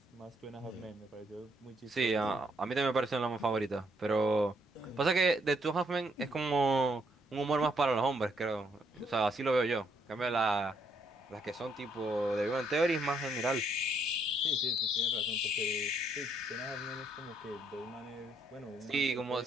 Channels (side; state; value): both; normal; correlation 0.72